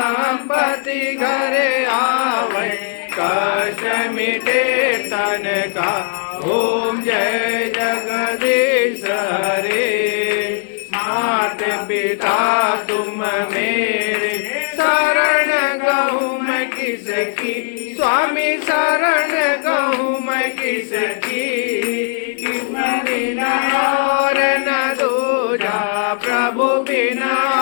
घरे आवे कष्ट मिटे तन का ओम जय जगदीश हरे मात पिता तुम मेरे शरण गहूँ मैं किसकी स्वामी शरण गहूँ मैं किसकी बिना और न दूजा प्रभु बिना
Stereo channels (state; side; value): silent; right; 59 dB below the other